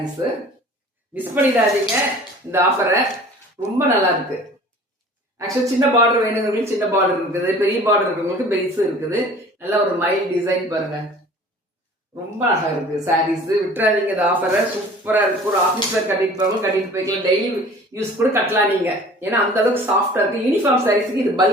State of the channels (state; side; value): normal; both; correlation 0.46